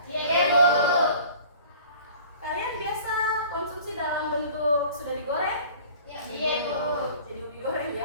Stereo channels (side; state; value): both; inverted; correlation -0.47